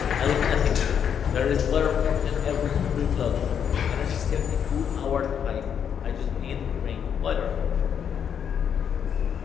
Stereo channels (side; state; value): right; quieter; 8.1 dB